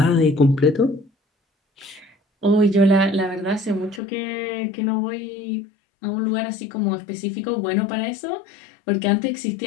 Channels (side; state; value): right; drops out; at 4.0 s